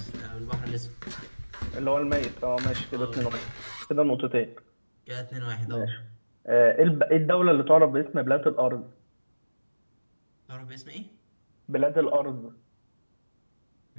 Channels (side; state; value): both; inverted; correlation -1.00